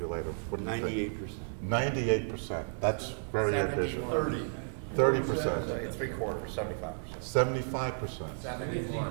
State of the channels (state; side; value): silent; left; digital silence